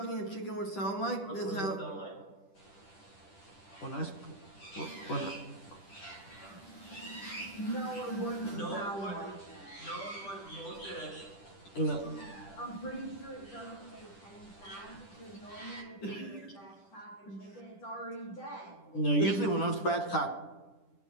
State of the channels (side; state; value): right; late; 10 ms